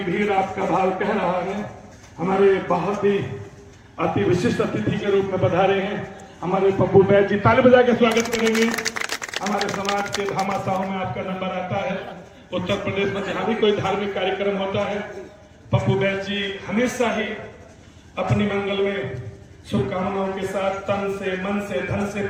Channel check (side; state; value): both; identical; correlation 1.00